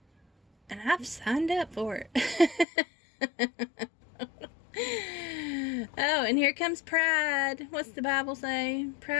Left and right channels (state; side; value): drops out; right; at 2.7 s